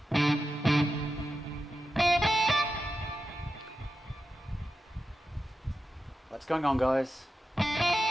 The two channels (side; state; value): both; normal; correlation 0.90